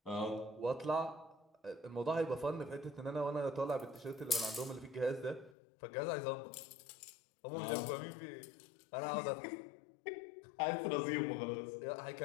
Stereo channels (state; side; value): drops out; right; at 5.6 s